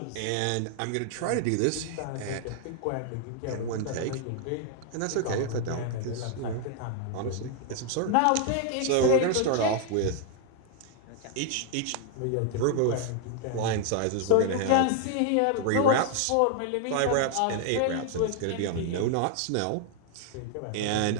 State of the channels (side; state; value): both; different; correlation 0.00